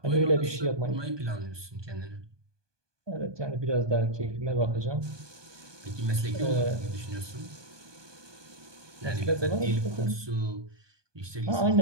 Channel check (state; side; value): late; left; 1.2 ms